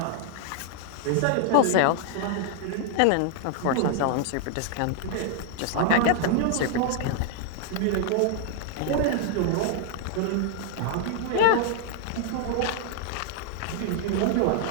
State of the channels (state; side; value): different; both; correlation 0.00